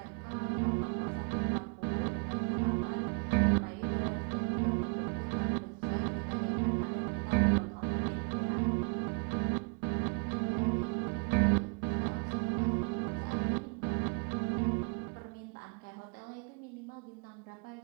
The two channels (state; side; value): quieter; left; 34.7 dB